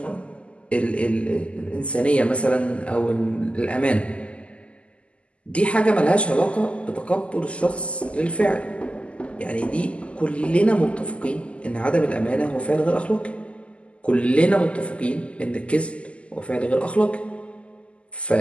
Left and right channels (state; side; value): late; right; 0.057 ms